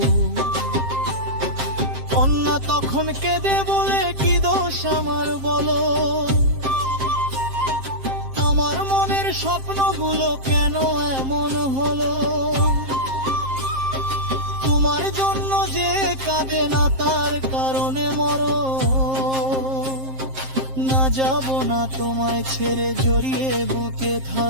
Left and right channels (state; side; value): late; left; 7.6 ms